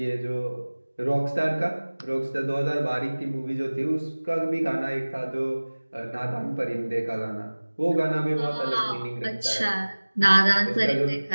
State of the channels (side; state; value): both; inverted; correlation -1.00